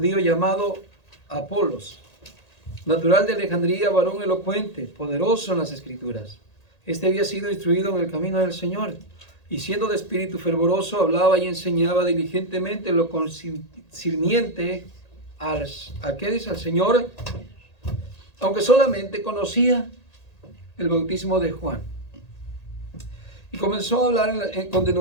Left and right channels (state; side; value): late; right; 1.8 ms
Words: llamado Apolos, natural de Alejandría, varón elocuente, poderoso en las Escrituras. Este había sido instruido en el camino del Señor, y siendo de espíritu fervoroso, hablaba y enseñaba diligentemente lo concerniente al Señor, aunque solamente conocía el bautismo de Juan. Y comenzó a hablar con